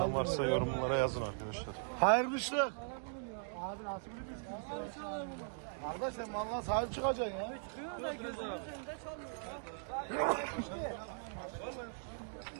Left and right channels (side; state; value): left; silent; digital silence